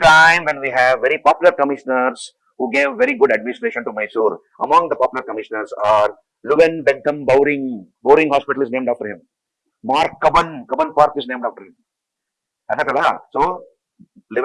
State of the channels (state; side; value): identical; both; correlation 1.00